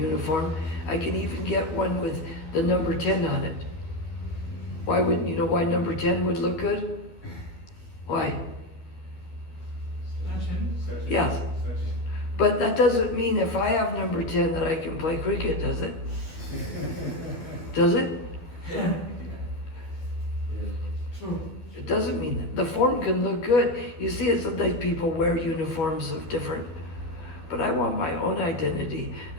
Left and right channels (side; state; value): right; late; 12 ms